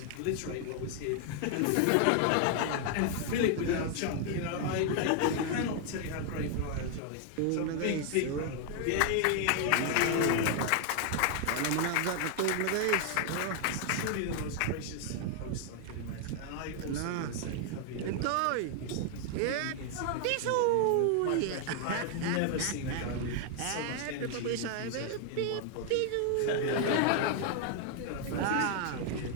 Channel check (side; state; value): both; different; correlation 0.00